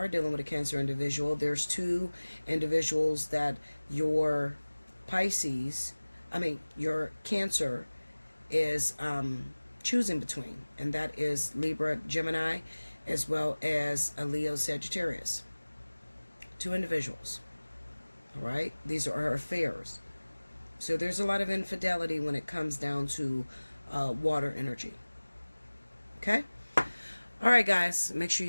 dealing with a Cancer individual, there's two individuals that your your Cancer is choosing between, and that is Libra, Gemini, as well as a Leo, Sagittarius. Two individuals. All right? These are her affairs. So there's a lot of infidelity when it comes down to water energy. Okay? All right, guys. Make sure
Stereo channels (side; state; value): both; inverted; correlation -1.00